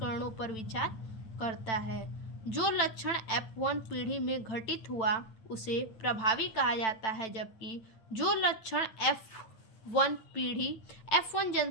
पर विचार करता है। जो लक्षण F1 पीढ़ी में घटित हुआ उसे प्रभावी कहा जाता है, जबकि जो लक्षण F1 पीढ़ी F1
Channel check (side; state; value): right; late; 9.0 ms